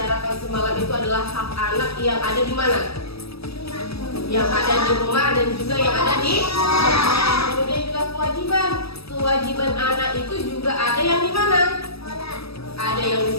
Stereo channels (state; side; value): late; right; 0.77 ms